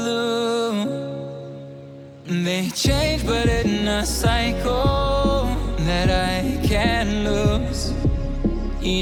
They change but in a cycle that I can't lose.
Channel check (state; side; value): identical; both; correlation 1.00